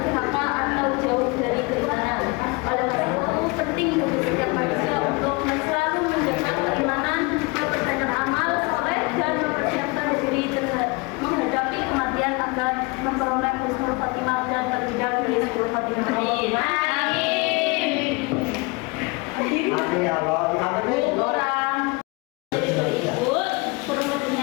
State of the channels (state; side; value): quieter; right; 27.3 dB